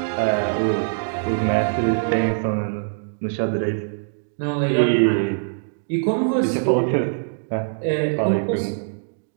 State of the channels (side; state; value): left; silent; digital silence